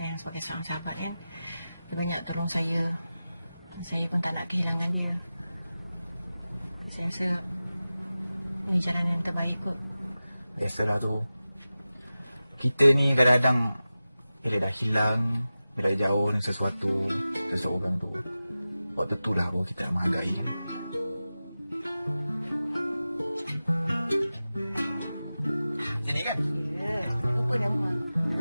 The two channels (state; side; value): inverted; both; correlation -0.95